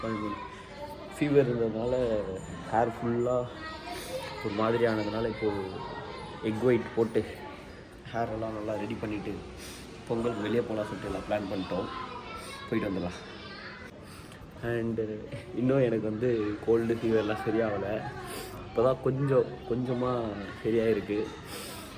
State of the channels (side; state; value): both; identical; correlation 1.00